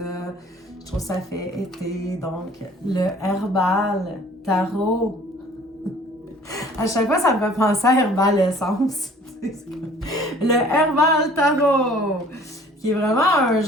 Je trouve que ça fait été. Donc, le Herbal Tarot. À chaque fois, ça me fait penser à Herbal Essence. Le Herbal Tarot, qui est vraiment un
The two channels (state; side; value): normal; both; correlation 0.52